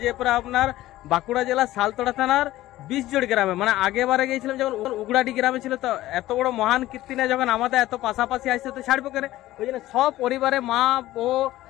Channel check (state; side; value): quieter; right; 15.7 dB